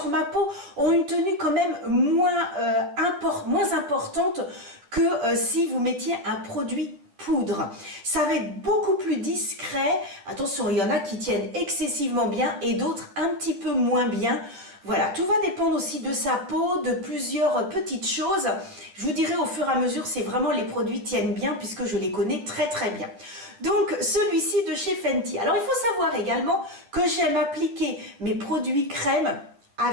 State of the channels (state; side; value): late; left; 10 ms